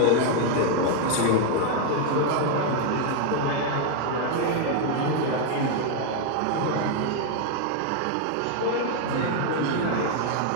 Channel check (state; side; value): different; both; correlation 0.01